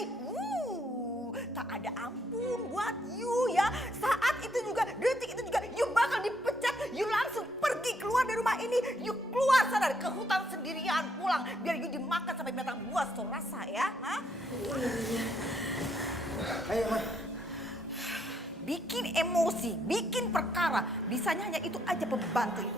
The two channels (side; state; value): both; normal; correlation 0.73